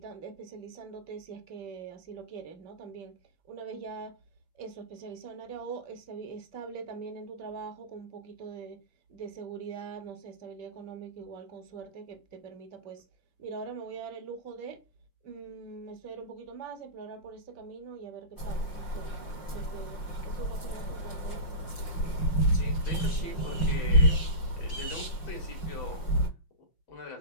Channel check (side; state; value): right; late; 5.6 ms